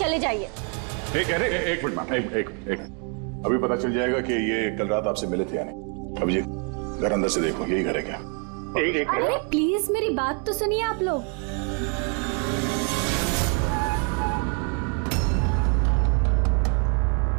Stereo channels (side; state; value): left; quieter; 39.1 dB